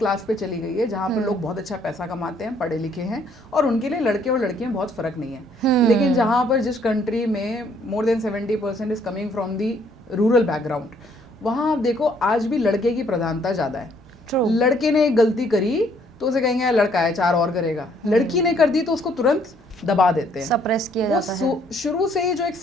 पे चली गई है, जहाँ पर लोग बहुत अच्छा पैसा कमाते हैं, पढ़े लिखे हैं, और उनके लिए लड़के और लड़कियां बहुत फर्क नहीं है। लेकिन जहाँ पर जिस कंट्री में मोर than 70% is coming from the rural background, वहाँ आप देखो आज भी लड़के की प्रधानता ज़्यादा है। लड़के ने एक गलती करी तो उसे कहेंगे यार लड़का है, 4 और करेगा। लड़की ने कर दी तो उसको तुरंत दबा देते हैं, सप्रेस किया जाता है। शुरू से ही जो एक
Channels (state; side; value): normal; both; correlation 0.65